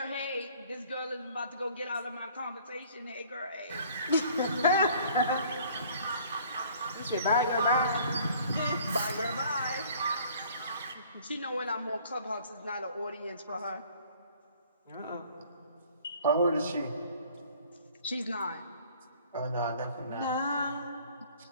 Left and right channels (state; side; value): inverted; both; correlation -0.55